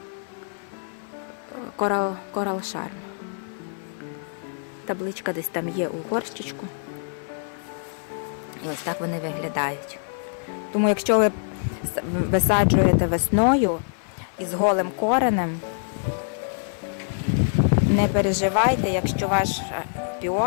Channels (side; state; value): right; silent; 62 dB below the other